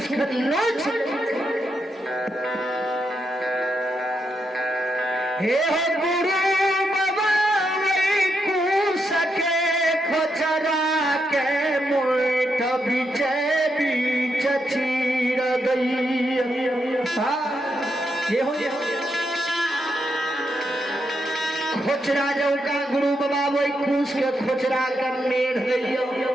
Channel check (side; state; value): both; normal; correlation 0.82